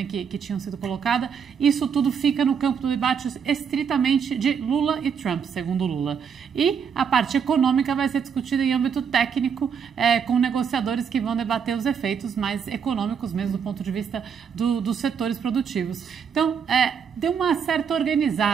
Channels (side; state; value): left; quieter; 7.0 dB